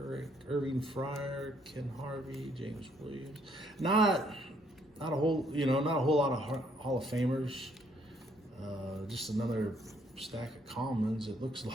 Irving Fryer, Ken Harvey, James Williams. Not a whole lot of Hall of Famers. Just another stack of commons, it looks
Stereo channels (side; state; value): both; normal; correlation 0.67